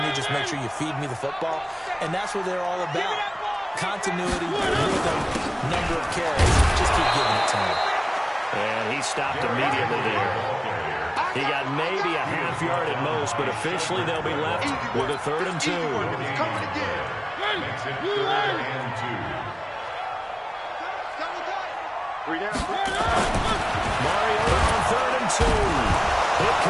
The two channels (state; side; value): identical; both; correlation 1.00